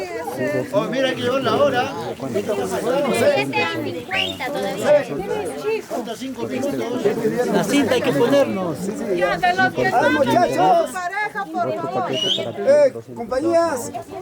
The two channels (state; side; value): identical; both; correlation 1.00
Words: Oh, mira que llegó la hora. 7:50 todavía. Falta 5 minutos. La cinta hay que ponernos. ya de los que no han venido su pareja, por favor. Compañías,